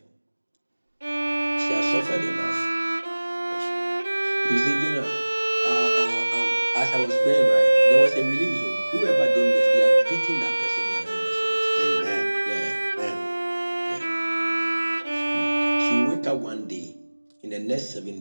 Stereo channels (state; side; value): inverted; both; correlation -1.00